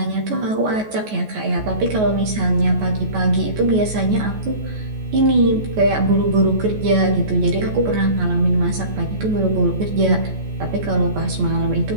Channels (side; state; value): left; late; 14 ms